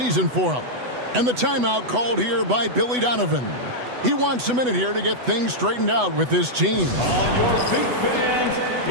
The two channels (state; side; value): late; left; 8.0 ms